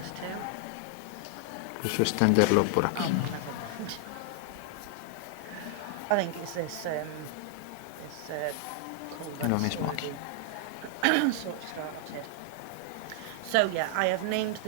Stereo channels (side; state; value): both; different; correlation 0.00